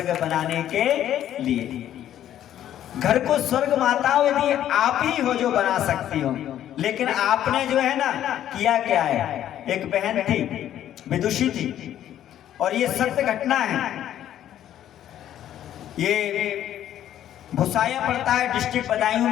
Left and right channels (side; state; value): right; quieter; 11.4 dB